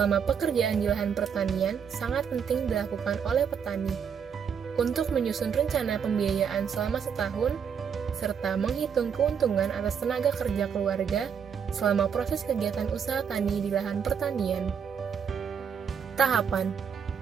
pekerjaan di lahan pertanian sangat penting dilakukan oleh petani untuk menyusun rencana pembiayaan selama setahun serta menghitung keuntungan atas tenaga kerja keluarga selama proses kegiatan usaha tani di lahan pertanian. Tahapan.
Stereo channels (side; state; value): left; quieter; 7.2 dB